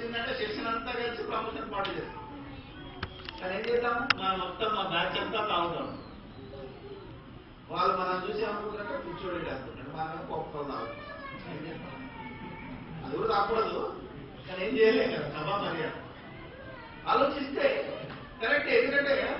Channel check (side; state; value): both; identical; correlation 1.00